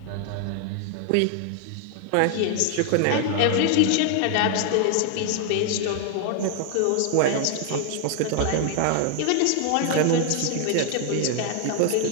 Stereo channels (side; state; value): both; different; correlation 0.00